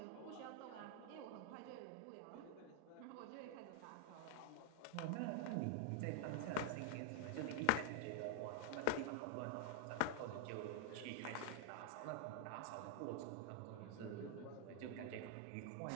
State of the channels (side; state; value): both; different; correlation 0.00